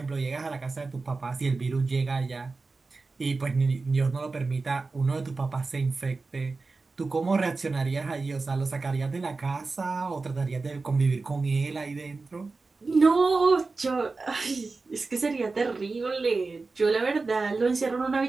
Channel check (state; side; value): quieter; left; 3.9 dB